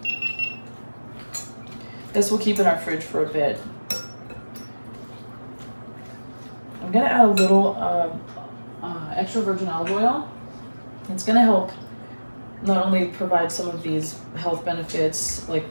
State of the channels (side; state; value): both; inverted; correlation -1.00